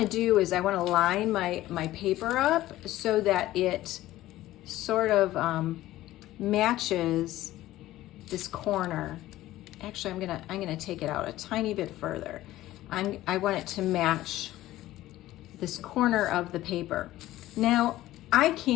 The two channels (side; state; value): right; quieter; 15.5 dB